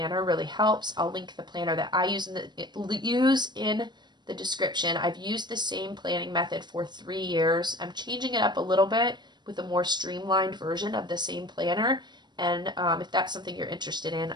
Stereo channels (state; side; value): late; left; 0.21 ms